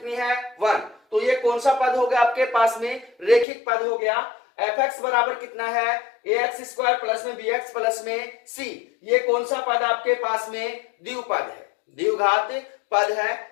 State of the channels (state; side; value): drops out; right; at 3.5 s